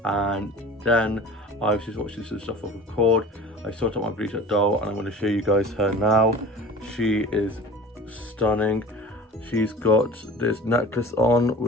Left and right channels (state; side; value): normal; both; correlation 0.40